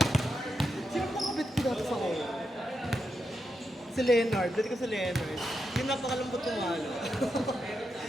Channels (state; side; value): normal; both; correlation 0.85